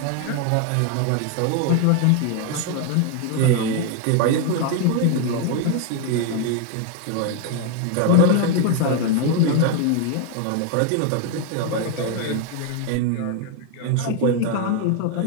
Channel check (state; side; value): different; both; correlation 0.00